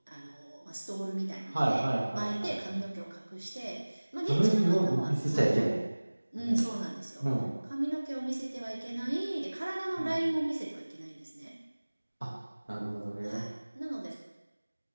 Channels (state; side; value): inverted; both; correlation -1.00